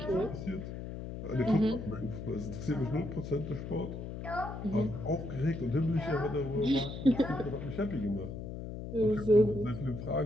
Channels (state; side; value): noise; left; hum, 8 dB below the sound